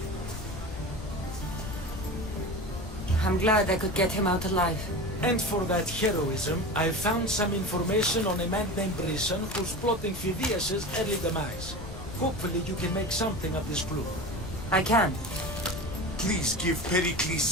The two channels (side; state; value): left; noise; rumble, 11 dB below the sound